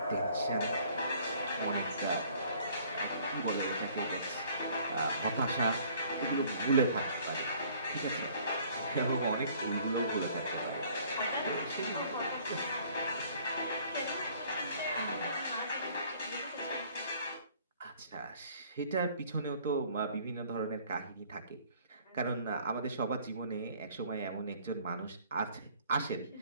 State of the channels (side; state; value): both; inverted; correlation -0.56